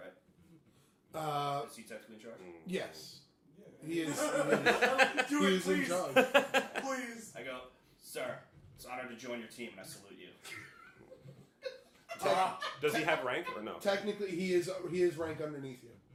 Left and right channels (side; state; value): both; identical; correlation 1.00